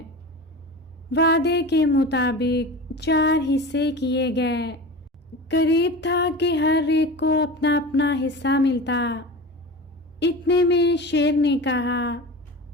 وعدے کے مطابق 4 حصے کیے گئے۔ قریب تھا کہ ہر ایک کو اپنا اپنا حصہ ملتا۔ اتنے میں شیر نے کہا،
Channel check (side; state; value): both; normal; correlation 0.31